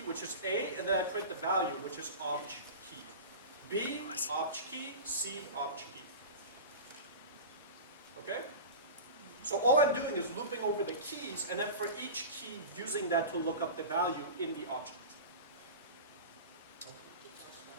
which is A, and then I print the value, which is obj key. B, obj key, C, obj key. Okay? So all I'm doing is looping over the keys, and then for each key, using that to look up the value in the object.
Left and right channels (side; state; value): both; inverted; correlation -0.30